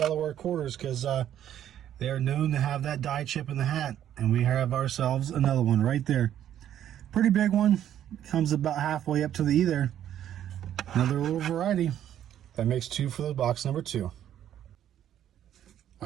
quarters because they are known to have that die chip in the hat. And we have ourselves another one right there. Pretty big one. Comes about halfway up to the E there. Another little variety. That makes 2 for the box number 2.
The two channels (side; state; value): left; quieter; 10.8 dB